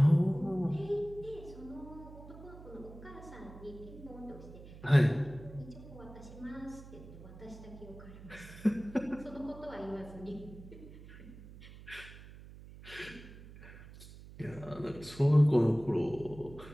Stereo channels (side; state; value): right; noise; hum, 16 dB below the sound